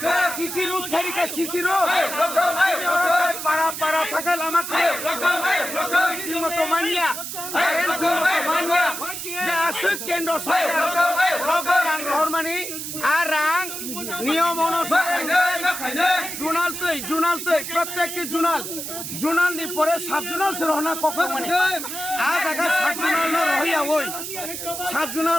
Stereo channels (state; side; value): noise; right; hiss, 7 dB below the sound